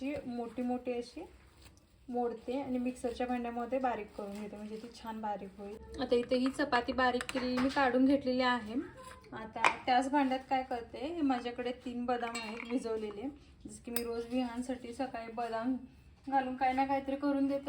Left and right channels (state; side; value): identical; both; correlation 1.00